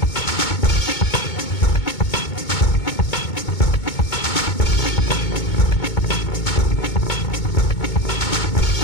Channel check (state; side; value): late; right; 2.2 ms